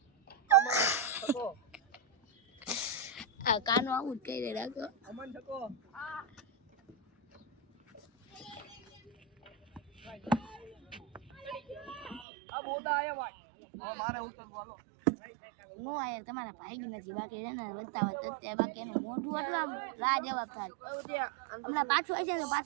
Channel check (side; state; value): left; drops out; at 12.2 s